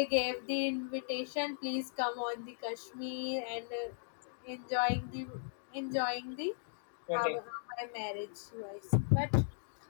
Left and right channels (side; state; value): right; silent; digital silence